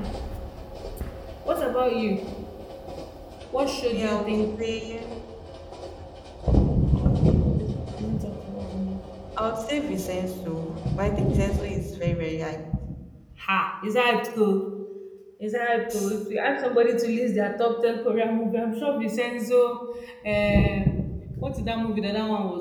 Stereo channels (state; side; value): identical; both; correlation 1.00